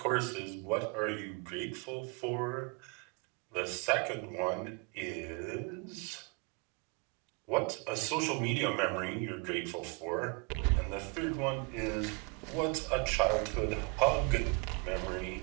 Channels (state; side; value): quieter; left; 32.0 dB